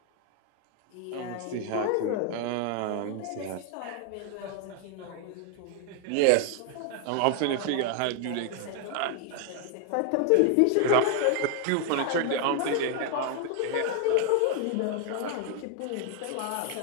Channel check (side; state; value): both; different; correlation 0.01